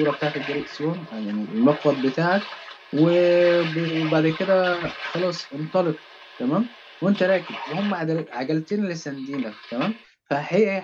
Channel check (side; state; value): both; identical; correlation 1.00